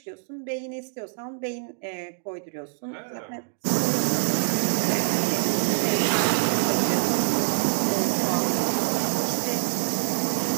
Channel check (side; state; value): left; silent; digital silence